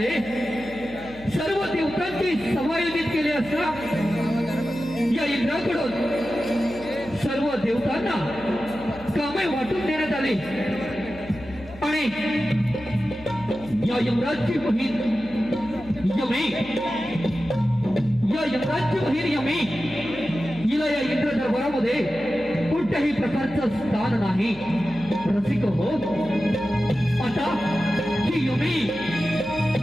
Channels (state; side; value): noise; left; hum, 19 dB below the sound